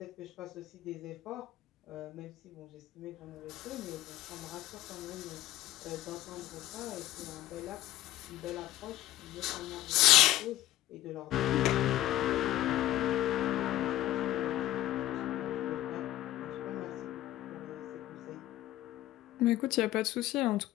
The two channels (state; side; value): quieter; right; 14.7 dB